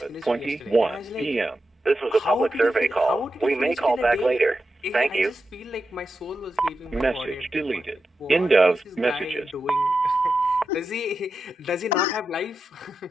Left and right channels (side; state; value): both; normal; correlation 0.89